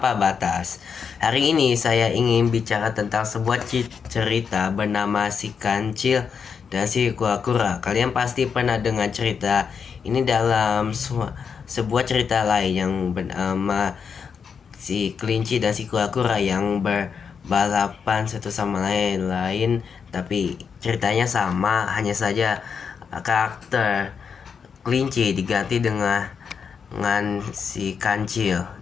batas. Hari ini saya ingin bicara tentang sebuah cerita bernama Si Kancil dan Si Kura-Kura. Kalian pasti pernah dengar cerita ini dalam sebuah cerita lain yang bernama Si Kelinci dan Si Kura-Kura yang balapan satu sama lain, tapi ceritanya sama, hanya saja karakter kelinci diganti dengan si kancil.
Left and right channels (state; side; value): quieter; right; 6.4 dB